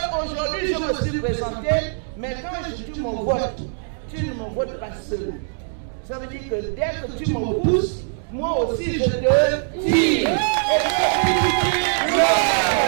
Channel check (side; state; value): left; silent; 64 dB below the other